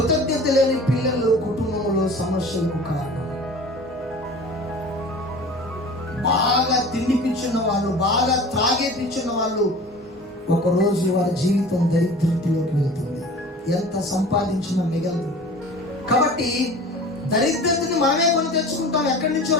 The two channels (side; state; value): both; normal; correlation 0.40